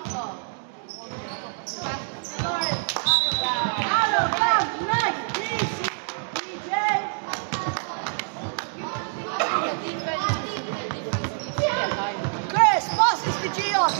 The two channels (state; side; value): silent; left; digital silence